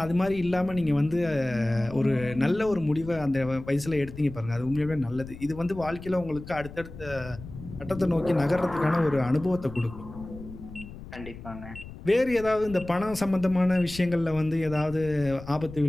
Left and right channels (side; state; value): left; noise; rumble, 14 dB below the sound